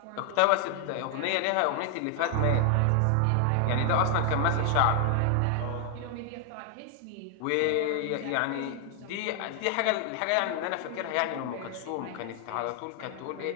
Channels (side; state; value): both; different; correlation 0.00